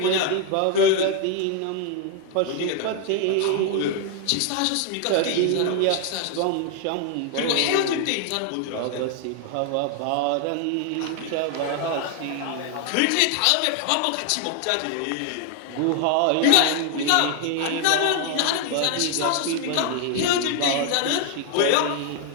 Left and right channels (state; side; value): different; both; correlation 0.00